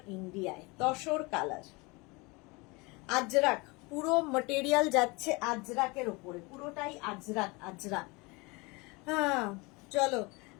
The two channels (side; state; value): right; quieter; 26.2 dB